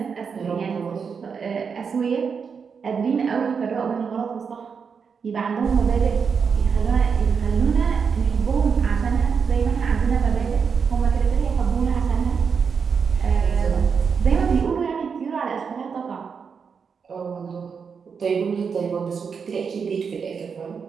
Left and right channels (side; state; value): left; quieter; 6.1 dB